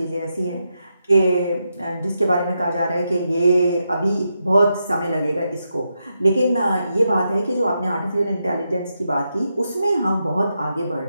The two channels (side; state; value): both; inverted; correlation -0.84